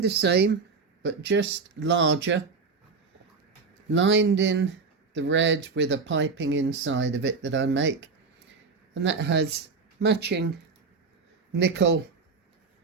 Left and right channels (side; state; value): left; quieter; 4.7 dB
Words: same, but just larger, lined in the red with a piping inside of it that I make, and that has matching nickel